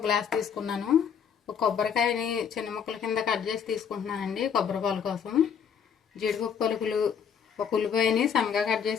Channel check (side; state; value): right; quieter; 7.4 dB